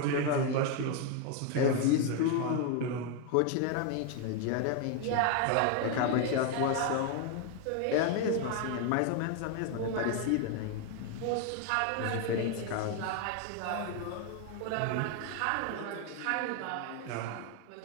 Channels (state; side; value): different; both; correlation 0.01